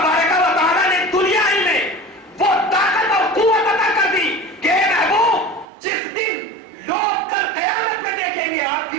و تعالیٰ نے دنیا ہی میں وہ طاقت اور قوت عطا کر دی کہ اے محبوب، جس دن لوگ کل قیامت میں دیکھیں گے، آپ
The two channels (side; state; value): left; drops out; at 5.7 s